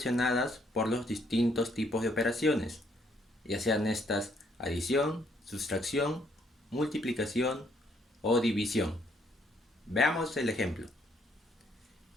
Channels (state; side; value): normal; both; correlation 0.69